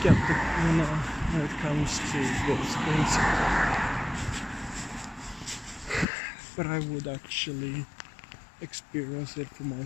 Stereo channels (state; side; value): drops out; right; at 6.1 s